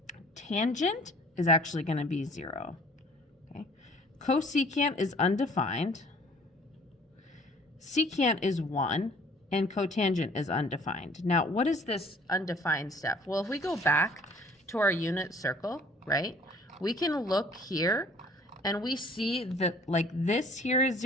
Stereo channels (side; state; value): both; normal; correlation 0.54